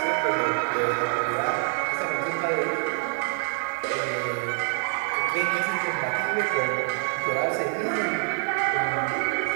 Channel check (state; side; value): silent; left; 56 dB below the other